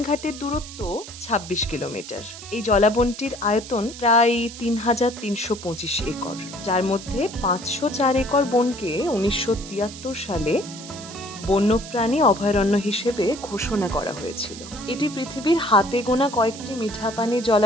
দূরত্ব ২৬ কিলোমিটার। এই জলাবনটির আয়তন প্রায় ৩,৩২৫ একর, যার মধ্যে ৫০৪ একর বনকে ১৯৭৩ সালে বন্যপ্রাণী অভয়ারণ্য হিসেবে ঘোষণা করা হয়েছিল। এটি পৃথিবীর হাতে গোনা কয়েকটি মিঠা পানির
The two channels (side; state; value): right; noise; hiss, 14 dB below the sound